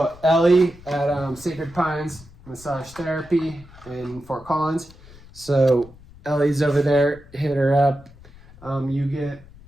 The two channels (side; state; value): left; noise; rumble, 22 dB below the sound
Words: Ellie at Sacred Pines Massage Therapy in Fort Collins. So Ellie's over there. Hit her up. You get